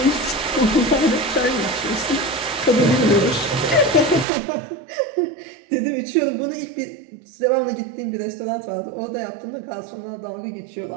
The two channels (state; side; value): drops out; left; at 4.2 s